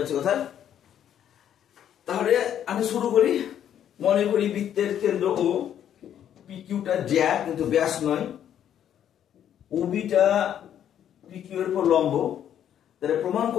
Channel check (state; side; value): quieter; right; 10.0 dB